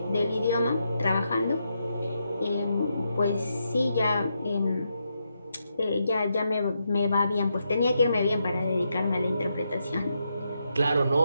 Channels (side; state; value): both; inverted; correlation -0.82